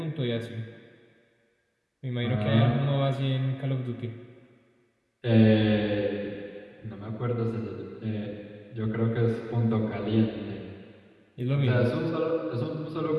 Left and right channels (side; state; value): both; identical; correlation 1.00